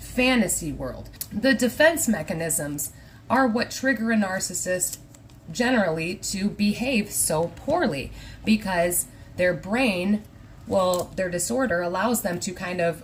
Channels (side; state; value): both; identical; correlation 1.00